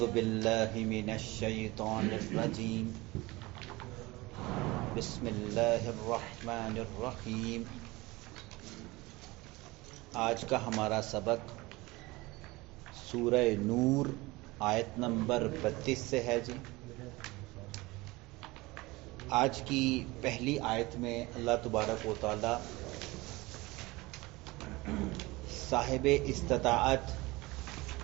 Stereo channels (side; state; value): left; quieter; 21.8 dB